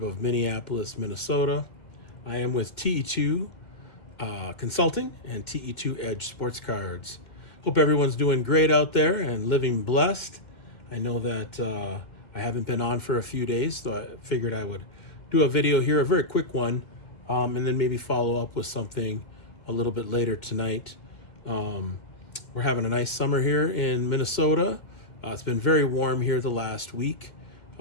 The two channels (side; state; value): right; late; 2.2 ms